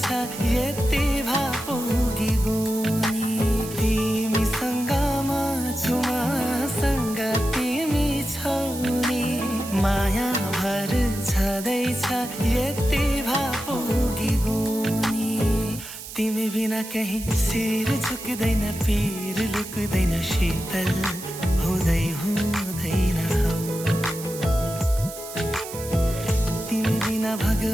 यति भा पुगेको नि तिमीसँग म छु मसँग तिमी छौ नि माया भर छँदैछ यति भा पुगेको नि तिमी बिना कहीं सिर झुक्दैन पिर लुक्दैन शीतल हुँदै हुँदैन हौ तिमी बिना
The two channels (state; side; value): noise; right; hiss, 12 dB below the sound